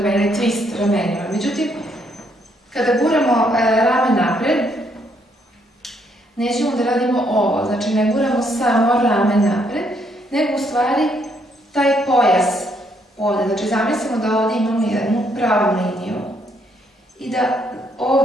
ili twist ramenima. Međutim, kada guramo rame napred, nećemo da radimo ovo, znači ne guramo samo rame napred, nego u stvari taj pojas ovde. Znači, zamislimo da ovde imamo jednu pravu liniju i da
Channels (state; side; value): normal; both; correlation 0.72